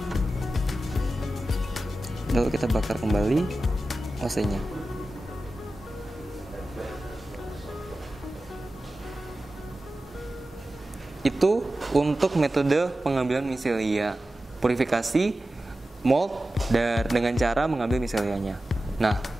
lalu kita bakar kembali OC-nya. Itu untuk metode pengambilan micelia purifikasi mold dengan cara mengambil miselianya. Nah,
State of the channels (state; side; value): normal; both; correlation 0.94